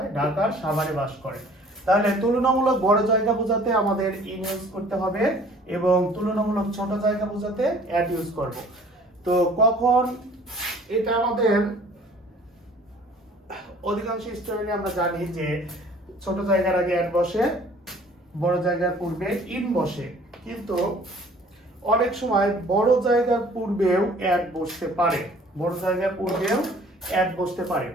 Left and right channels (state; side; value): normal; both; correlation 0.52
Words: ঢাকার সাভারে বাস করে। তাহলে তুলনামূলক বড় জায়গা বোঝাতে আমাদের ইন ইউজ করতে হবে এবং তুলনামূলক ছোট জায়গা বোঝাতে অ্যাট ইউজ করব। তো কখন এটা আমাদের অধিকাংশ স্টুডেন্ট আমরা জানি যে ছোট জায়গার আগে অ্যাট বসে, বড় জায়গার পূর্বে ইন বসে, কিন্তু অনেক সময় বড় জায়গার পূর্বেও অ্যাট বসতে পারে, বড় জায়গার পূর্বেও অ্যাট বসতে পারে।